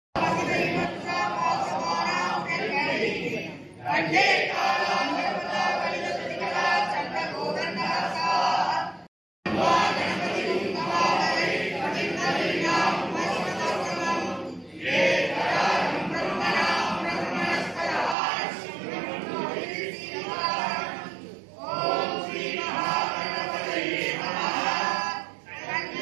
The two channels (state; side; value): drops out; left; at 18.2 s